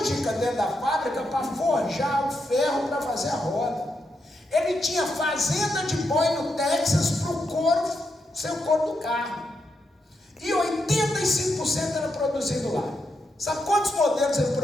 dentro da fábrica para forjar o ferro para fazer a roda. Ele tinha fazenda de boi no Texas para o couro, ser o couro do carro. E 85% era produzido lá. Sabe quantos modelos ele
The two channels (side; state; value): both; normal; correlation 0.83